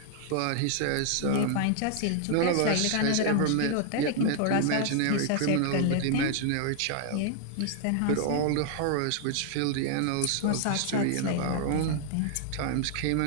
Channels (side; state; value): both; different; correlation 0.00